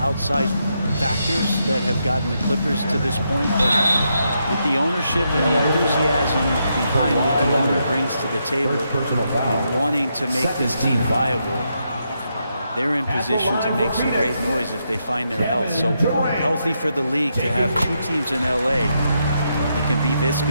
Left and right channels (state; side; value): inverted; both; correlation -0.81